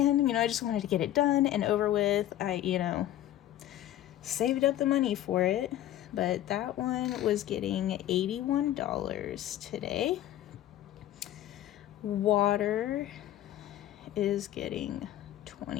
I just wanted to get it done and over with. I, saved up the money for it, but that one was getting $81 today. Water is getting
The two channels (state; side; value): quieter; right; 13.0 dB